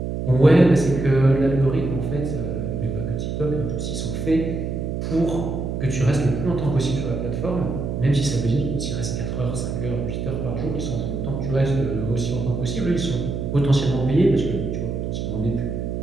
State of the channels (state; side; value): noise; right; hum, 3 dB below the sound